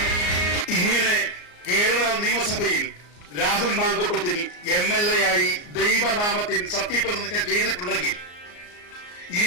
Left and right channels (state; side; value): late; right; 34 ms